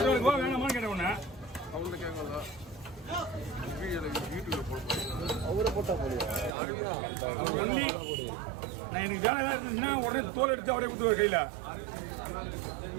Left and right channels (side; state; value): left; drops out; at 6.5 s